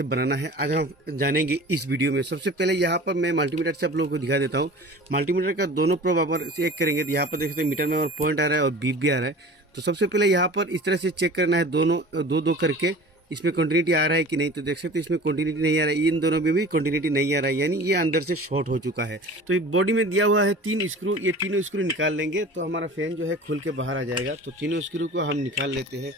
बनाना है आज हम जानेंगे इस वीडियो में। सबसे पहले यहाँ पर मैं मल्टीमीटर से आप लोगों को दिखा देता हूँ। मल्टीमीटर का दोनों प्रोब आप चेक करेंगे तो यहाँ पर देख सकते हैं मीटर में और पॉइंट आ रहा है और बीप भी आ रहा है। तो सबसे पहले यहाँ पर इस तरह से चेक करना है, दोनों दो दो करके इसमें कंटिन्यूटी आ रहा है कि नहीं। तो देख सकते हैं इसमें कंटिन्यूटी नहीं आ रहा है, इन दोनों में भी कंटिन्यूटी नहीं आ रहा है, यानी ये अंदर से शॉर्ट हो चुका है। तो ये बॉडी में दिया हुआ है 3 स्क्रू, ये तीनों स्क्रू निकाल लेंगे तो हमारा फैन जो है खुल के बाहर आ जाएगा। तो तीनों स्क्रू को हम निकाल लेते हैं।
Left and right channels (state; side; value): normal; both; correlation 0.40